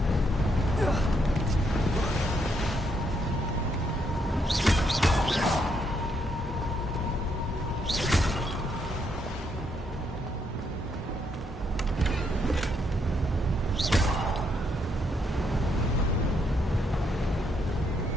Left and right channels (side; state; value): both; normal; correlation 0.75